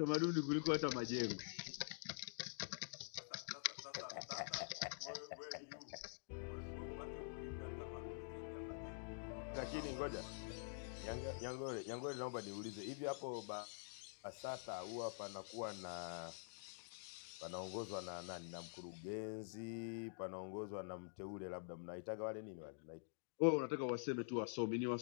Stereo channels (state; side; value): silent; right; digital silence